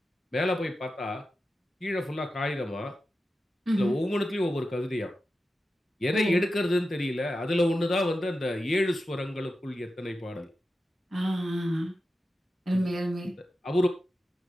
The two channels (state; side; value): normal; both; correlation 0.92